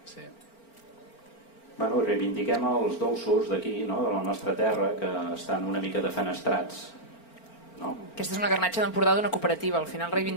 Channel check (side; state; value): right; late; 4.4 ms